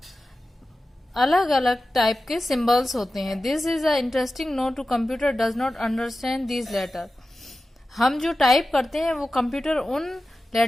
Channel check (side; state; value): both; normal; correlation 0.94